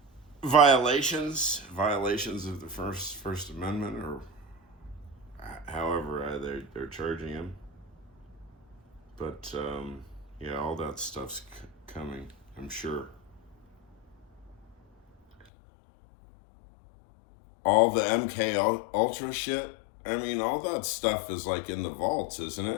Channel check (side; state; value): right; drops out; at 15.5 s